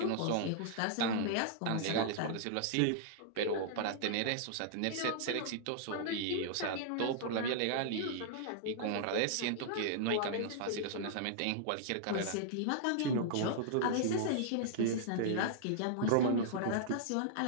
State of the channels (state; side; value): different; both; correlation -0.01